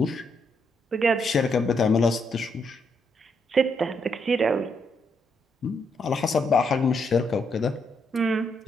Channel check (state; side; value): normal; both; correlation 0.77